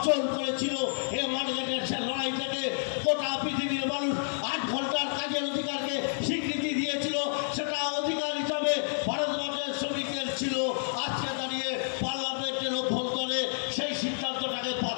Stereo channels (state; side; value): silent; right; 58 dB below the other